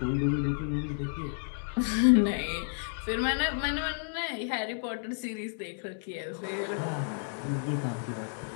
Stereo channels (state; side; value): silent; right; digital silence